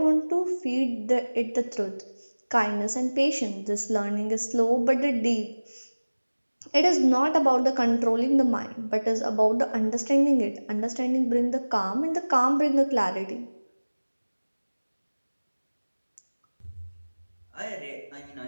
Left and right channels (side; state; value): both; inverted; correlation -1.00